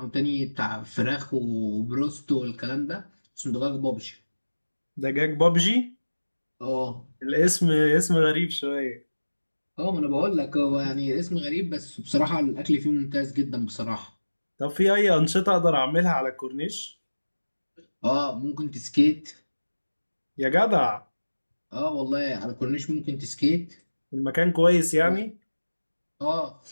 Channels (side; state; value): both; inverted; correlation -1.00